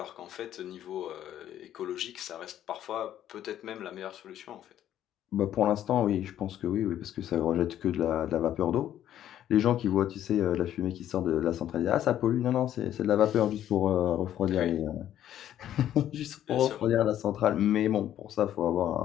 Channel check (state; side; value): quieter; right; 11.4 dB